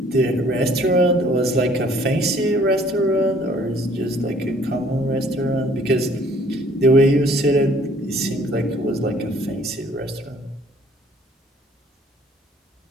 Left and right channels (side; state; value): both; normal; correlation 0.58